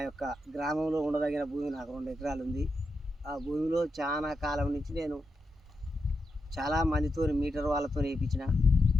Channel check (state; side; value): normal; both; correlation 0.86